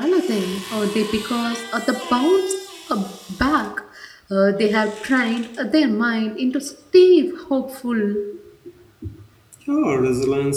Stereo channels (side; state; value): both; identical; correlation 1.00